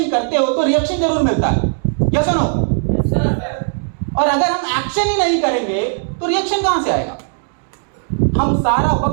करते हो तो रिएक्शन जरूर मिलता है, यस और नो? और अगर हम एक्शन ही नहीं करेंगे तो रिएक्शन कहां से आएगा? हम सारा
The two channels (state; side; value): silent; left; digital silence